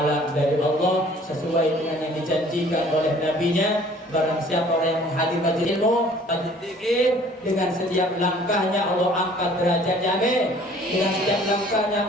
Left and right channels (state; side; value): normal; both; correlation 0.53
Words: dari Allah sesuai dengan yang dijanjikan oleh Nabi-Nya. Barang siapa orang yang menghadiri majelis ilmu, majelis zikir, dengan setiap langkahnya Allah angkat derajatnya, amin. Dengan setiap langkahnya